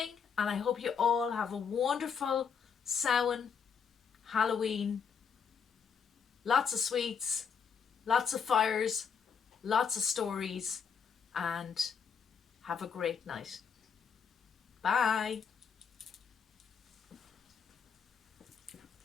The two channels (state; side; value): quieter; right; 6.5 dB